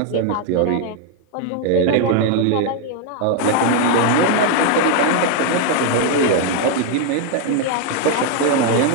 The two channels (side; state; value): both; different; correlation 0.00